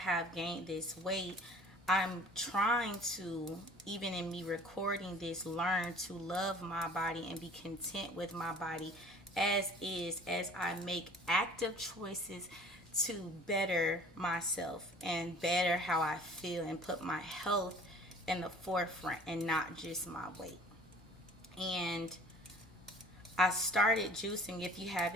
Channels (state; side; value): normal; both; correlation 0.49